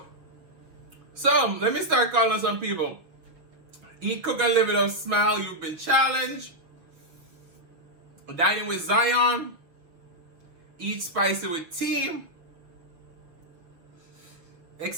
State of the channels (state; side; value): late; left; 6.2 ms